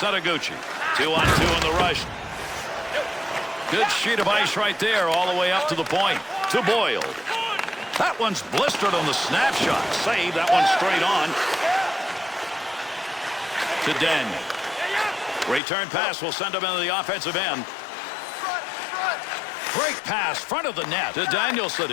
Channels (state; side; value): drops out; right; at 15.6 s